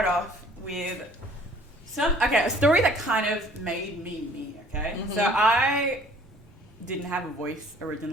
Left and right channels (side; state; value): both; normal; correlation 0.54